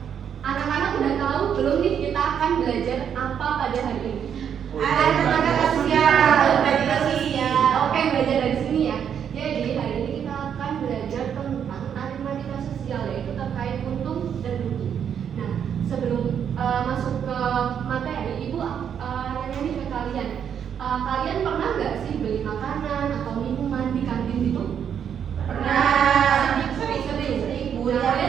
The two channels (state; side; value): quieter; left; 8.3 dB